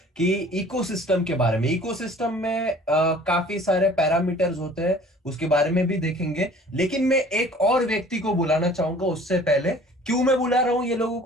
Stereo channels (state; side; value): normal; both; correlation 0.50